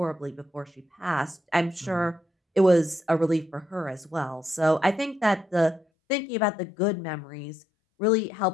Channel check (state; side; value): drops out; right; at 5.9 s